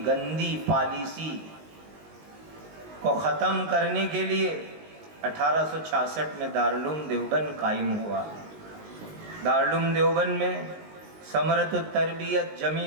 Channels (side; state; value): left; late; 19 ms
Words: گندی پالیسی کو ختم کرنے کے لیے 1866 میں دارالعلوم دیوبند قائم ہوا۔ دارالعلوم دیوبند میں ثمرۃ التربیت،